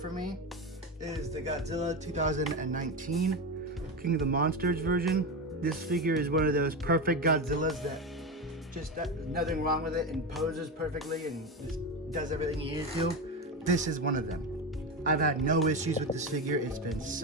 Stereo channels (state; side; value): normal; both; correlation 0.17